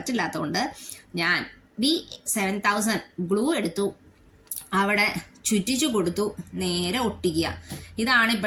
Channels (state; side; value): identical; both; correlation 1.00